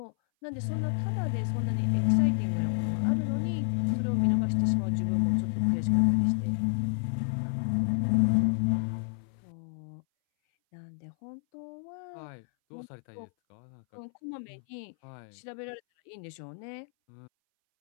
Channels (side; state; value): right; silent; 58 dB below the other